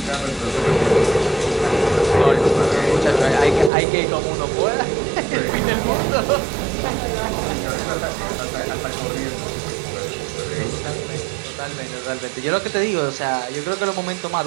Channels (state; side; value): drops out; left; at 3.7 s